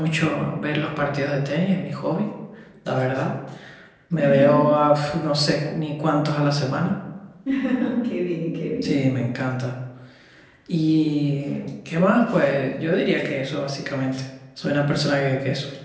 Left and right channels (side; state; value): both; identical; correlation 1.00